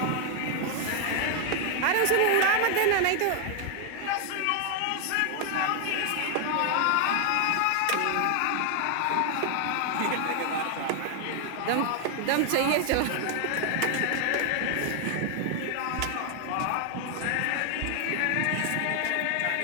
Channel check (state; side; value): different; both; correlation 0.00